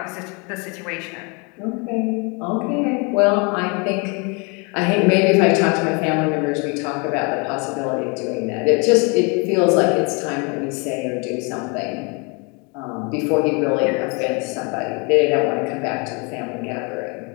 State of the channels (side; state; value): right; quieter; 31.7 dB